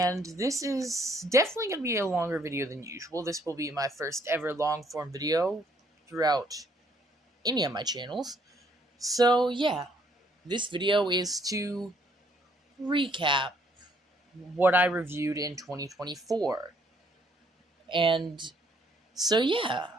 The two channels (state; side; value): normal; both; correlation 0.66